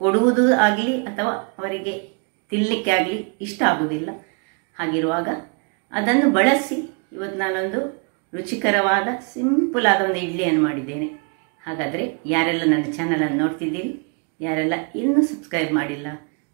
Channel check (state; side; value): quieter; left; 37.0 dB